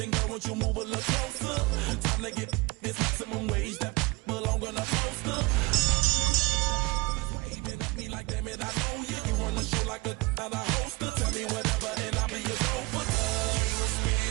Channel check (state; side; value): quieter; left; 24.1 dB